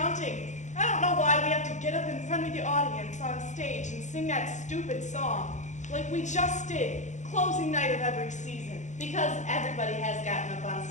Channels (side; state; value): right; late; 0.35 ms